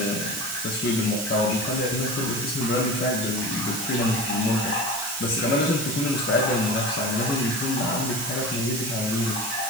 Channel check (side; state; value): right; noise; hiss, 6 dB below the sound